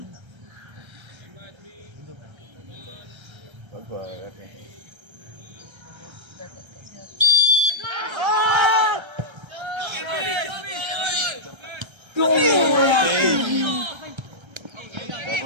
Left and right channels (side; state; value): left; late; 1.3 ms